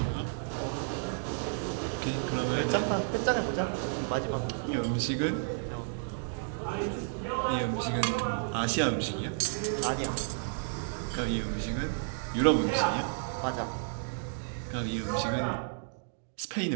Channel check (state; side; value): silent; left; digital silence